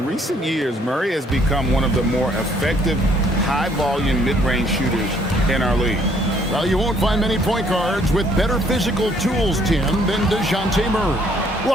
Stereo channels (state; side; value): normal; both; correlation 0.64